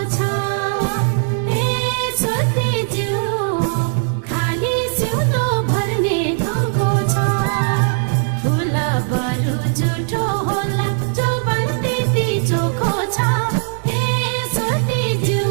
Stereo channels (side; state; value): left; silent; 67 dB below the other